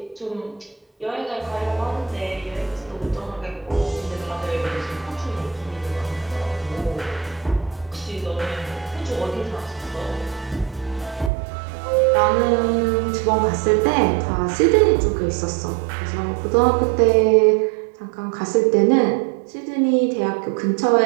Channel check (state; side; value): drops out; left; at 11.3 s